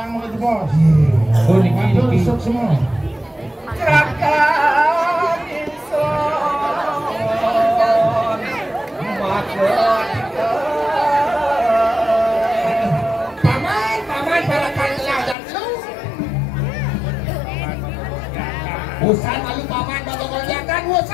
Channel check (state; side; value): drops out; right; at 15.4 s